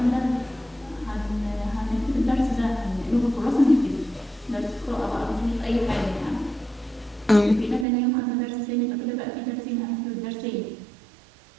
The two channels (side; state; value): left; drops out; at 7.9 s